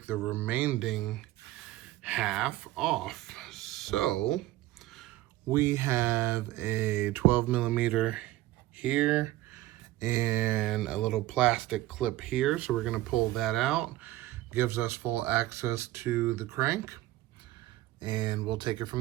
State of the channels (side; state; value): left; quieter; 16.4 dB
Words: the remaining half off. So we have a 12 millimeter here and a little plastic clip here. So we're gonna pull that out. Gives us full access to the crank, and we'll take it